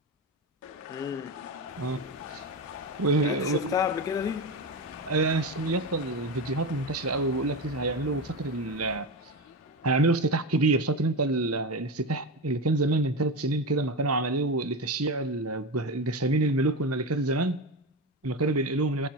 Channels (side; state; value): both; normal; correlation 0.19